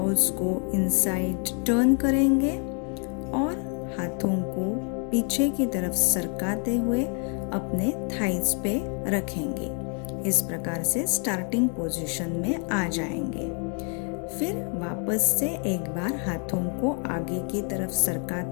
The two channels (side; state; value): right; quieter; 39.6 dB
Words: को इनसाइड टर्न करेंगे और हाथों को पीछे की तरफ सरकाते हुए अपने थाइज पे रखेंगे। इस प्रकार से स्टार्टिंग पोजीशन में आ जाएंगे। फिर वापस से एक बार हाथों को आगे की तरफ